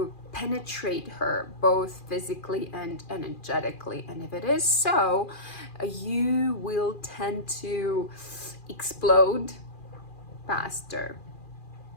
penetrate her both physically and energetically. And if it is so, you will tend to explode faster.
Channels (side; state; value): right; late; 2.4 ms